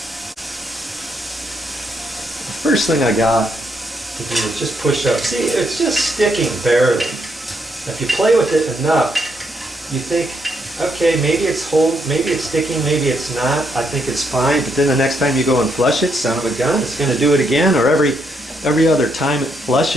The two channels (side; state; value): both; normal; correlation 0.76